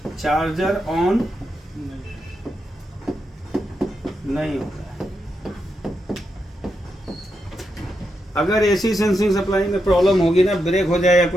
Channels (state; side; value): normal; both; correlation 0.85